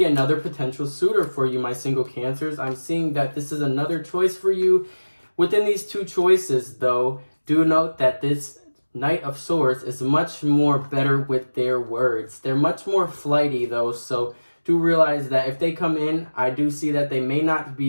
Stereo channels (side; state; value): both; inverted; correlation -1.00